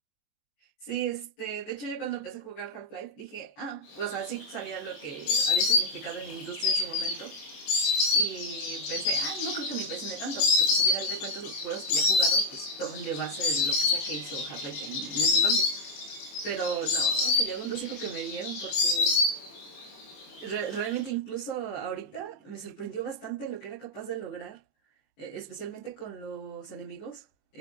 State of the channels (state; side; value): late; right; 21 ms